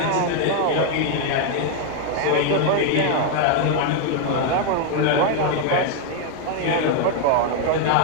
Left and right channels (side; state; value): both; different; correlation 0.00